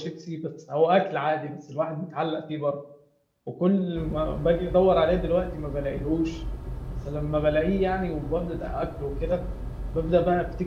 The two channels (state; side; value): identical; both; correlation 1.00